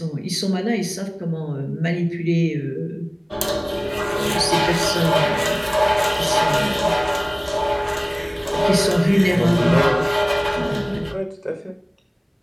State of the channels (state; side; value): identical; both; correlation 1.00